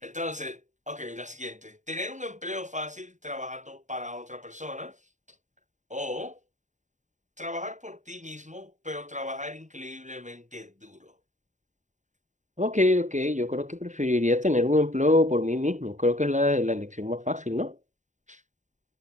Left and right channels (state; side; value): late; left; 0.35 ms